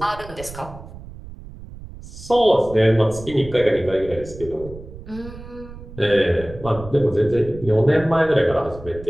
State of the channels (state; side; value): noise; right; rumble, 15 dB below the sound